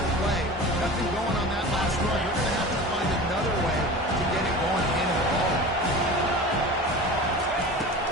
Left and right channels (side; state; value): both; normal; correlation 0.35